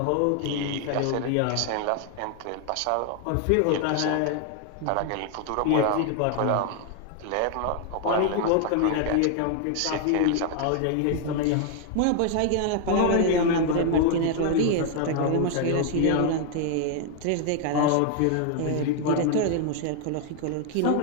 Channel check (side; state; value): both; different; correlation 0.00